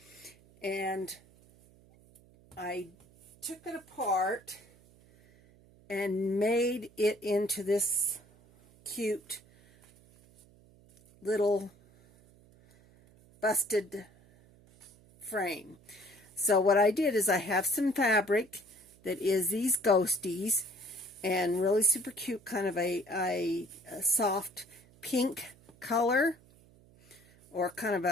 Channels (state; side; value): noise; right; hum, 27 dB below the sound